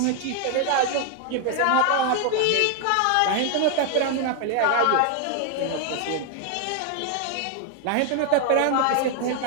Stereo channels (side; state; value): both; different; correlation 0.00